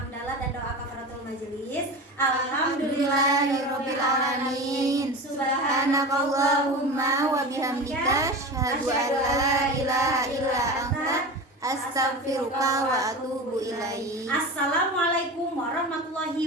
dan doa kafaratul majelis. Alhamdulillahirabbil alamin. Subhanakallahumma wa bihamdika asyhadu an la ilaha illa anta astaghfiruka wa atubu ilaik. Assalamualaikum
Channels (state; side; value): normal; both; correlation 0.29